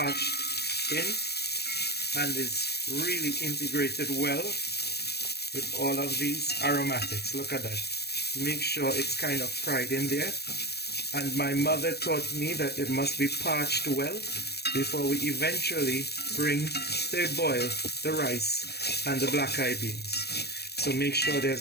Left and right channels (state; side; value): late; right; 0.47 ms